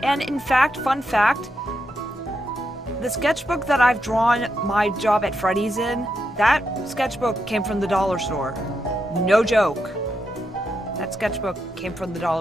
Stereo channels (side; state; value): both; normal; correlation 0.83